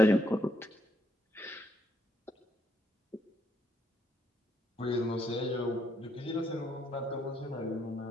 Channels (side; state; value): both; normal; correlation 0.74